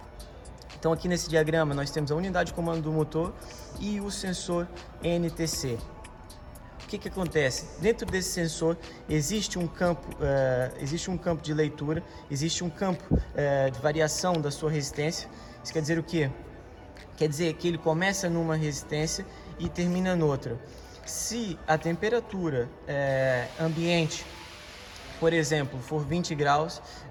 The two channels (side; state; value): both; identical; correlation 1.00